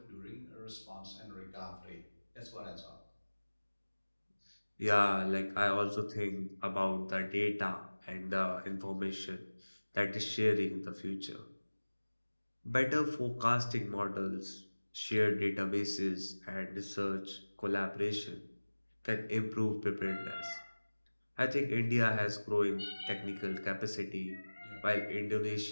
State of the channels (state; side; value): inverted; both; correlation -1.00